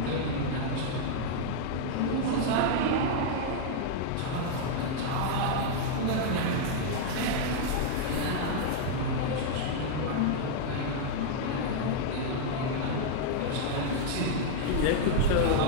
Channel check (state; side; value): different; both; correlation -0.01